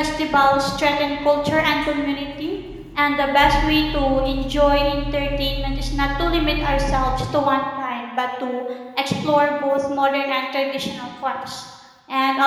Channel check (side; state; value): both; identical; correlation 1.00